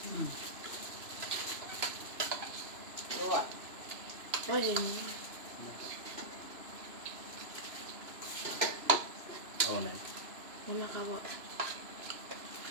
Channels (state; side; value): late; left; 2.9 ms